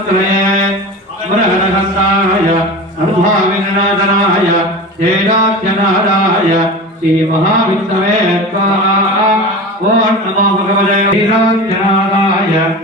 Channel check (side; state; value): both; normal; correlation 0.31